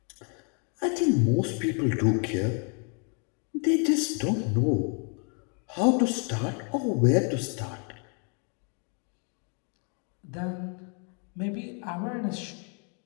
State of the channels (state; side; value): quieter; right; 39.1 dB